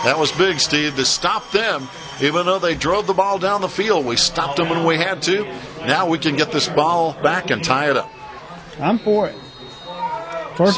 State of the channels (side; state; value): both; identical; correlation 1.00